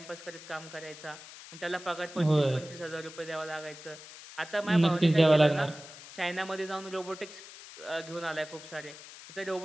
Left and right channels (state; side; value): noise; left; hiss, 16 dB below the sound